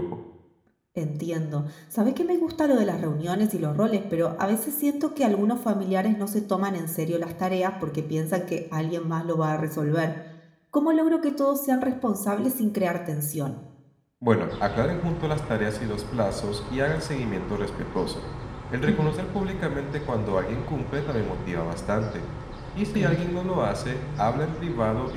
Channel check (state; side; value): identical; both; correlation 1.00